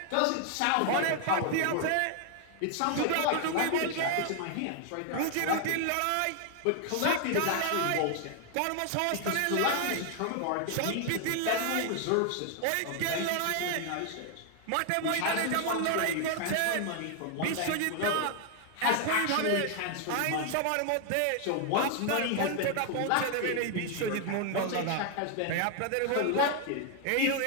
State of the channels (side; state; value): both; different; correlation 0.00